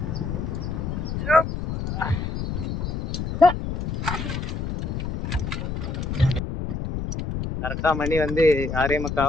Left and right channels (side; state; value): left; noise; rumble, 3 dB below the sound